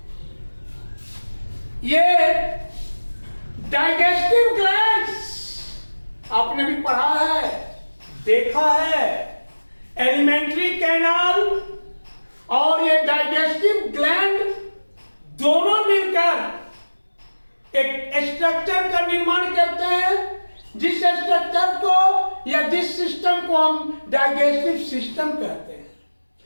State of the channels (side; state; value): both; inverted; correlation -1.00